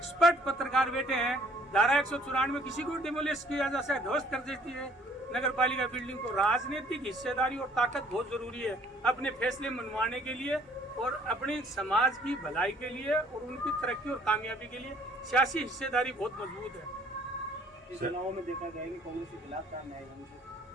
पत्रकार बैठे हैं, धारा 194 में किसी को डिमोलिश किया जा सकता है, ध्वस्त कर देती है नगर पालिका बिल्डिंग को। राजनीतिक हिस्सेदारी और ताकत बहुत जरूरी है अपने फैसले मनवाने के लिए और अपने समाज की भलाई के लिए और उनकी तरक्की और कामयाबी के लिए सियासी हिस्सेदारी बहुत मजबूत है। इस चुनाव में देखा गया कि कांग्रेस के खिलाफ था न्याय मंच,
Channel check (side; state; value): both; normal; correlation 0.59